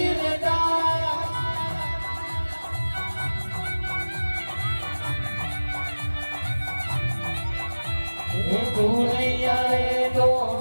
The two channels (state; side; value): inverted; both; correlation -1.00